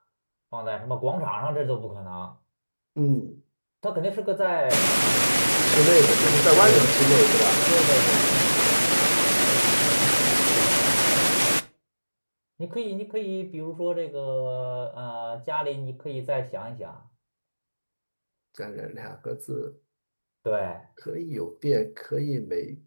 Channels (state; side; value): inverted; both; correlation -1.00